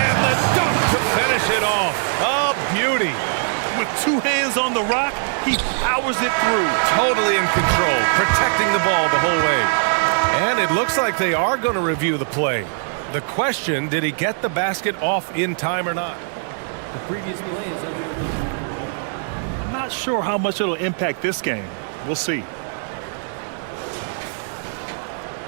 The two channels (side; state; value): left; silent; 58 dB below the other